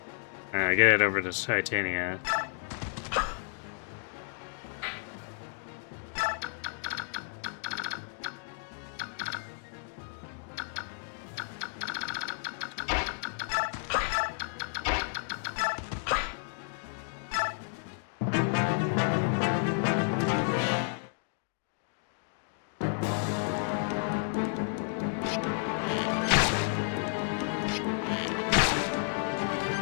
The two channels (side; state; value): right; silent; 57 dB below the other